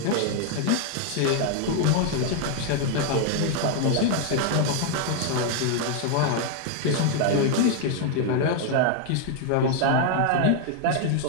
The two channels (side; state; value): both; different; correlation 0.00